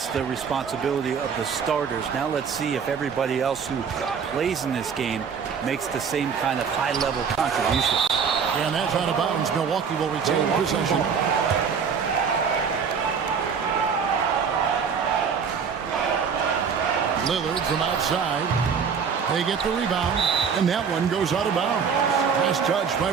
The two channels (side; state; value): left; quieter; 6.4 dB